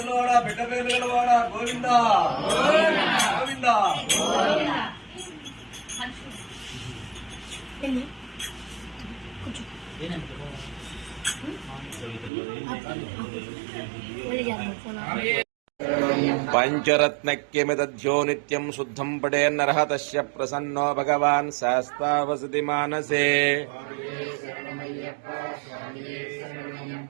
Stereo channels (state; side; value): drops out; left; at 12.3 s